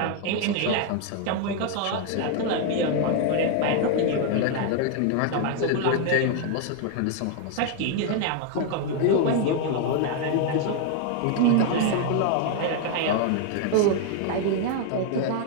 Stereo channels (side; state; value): both; different; correlation 0.00